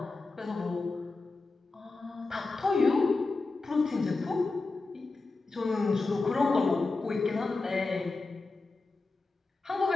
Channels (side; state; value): right; quieter; 3.6 dB